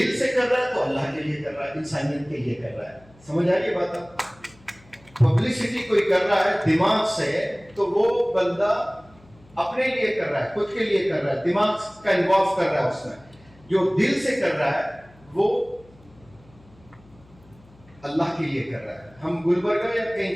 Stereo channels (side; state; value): left; noise; hum, 27 dB below the sound